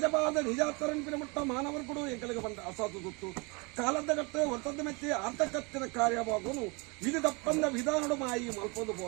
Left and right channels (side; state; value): left; quieter; 29.2 dB